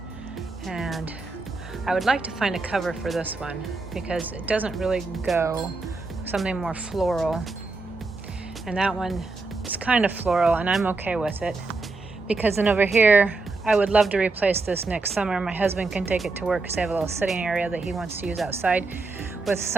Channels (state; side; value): quieter; left; 3.6 dB